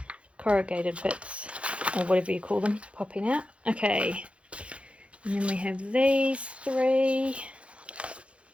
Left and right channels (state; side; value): late; left; 0.061 ms